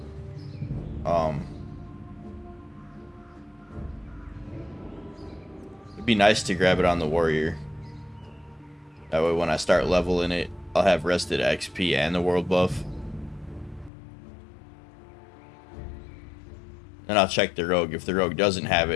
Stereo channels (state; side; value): drops out; right; at 13.9 s